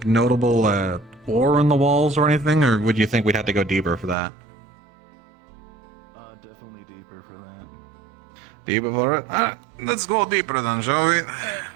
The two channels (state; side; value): drops out; left; at 4.2 s